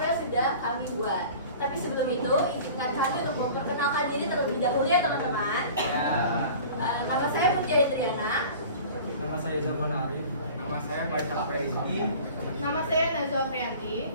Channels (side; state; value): both; inverted; correlation -0.42